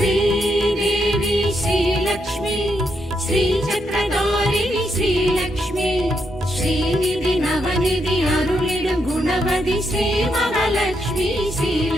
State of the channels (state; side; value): normal; both; correlation 0.80